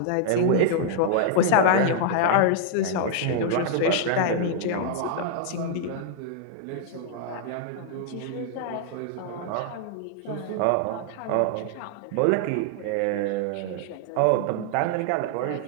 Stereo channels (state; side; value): different; both; correlation -0.01